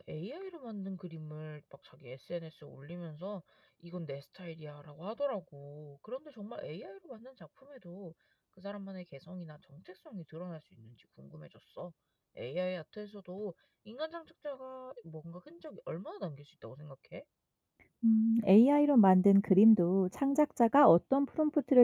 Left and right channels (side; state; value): both; identical; correlation 1.00